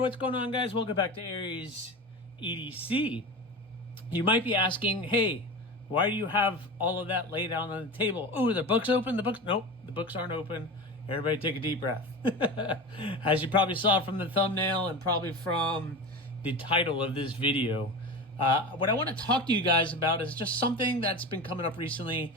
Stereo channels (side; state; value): both; normal; correlation 0.28